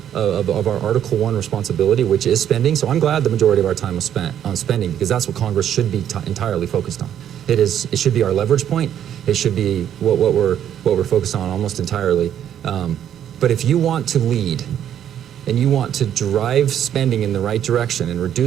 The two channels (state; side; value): quieter; left; 10.0 dB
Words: Article 1 responsibility, which is spending, so I'm glad the majority of our time was spent on spending, because that's what Congress should be entirely focused on. It should be our leverage point. It should be what we're focused on almost entirely. But if you want to lead and you want to drive spending in the right direction and